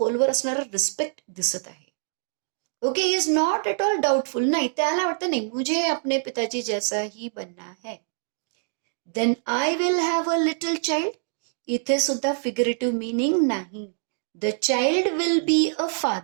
असणारा रिस्पेक्ट दिसत आहे. Okay, he is not at all doubtful. नाही, त्याला वाटतं नाही मुझे अपने पिताजी जैसा ही बनना है. Then I will have a little child. इथे सुद्धा फिगरेटिव्ह मीनिंग नाही. The child will be a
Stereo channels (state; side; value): silent; left; digital silence